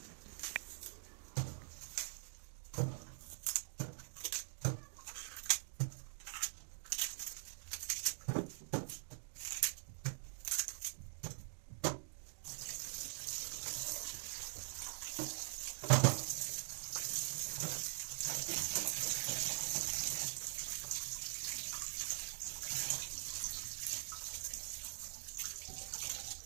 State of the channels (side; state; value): left; silent; digital silence